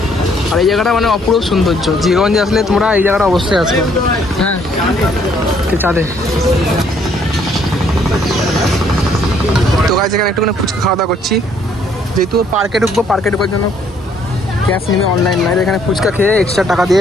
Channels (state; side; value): normal; both; correlation 0.65